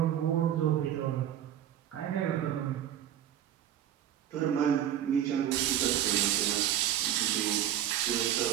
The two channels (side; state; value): left; quieter; 11.0 dB